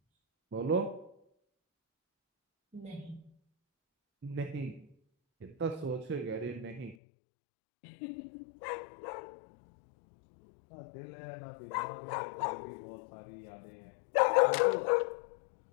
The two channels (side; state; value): right; drops out; at 7.0 s